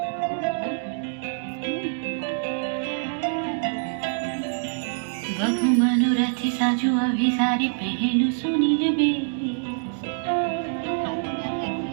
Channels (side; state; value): left; silent; digital silence